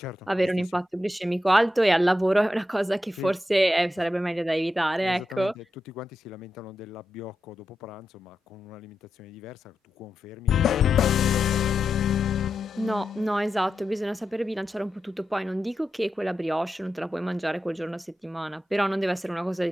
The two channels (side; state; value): both; normal; correlation 0.88